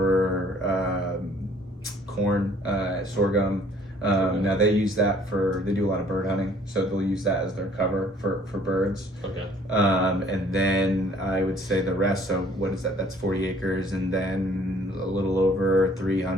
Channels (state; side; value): normal; both; correlation 0.57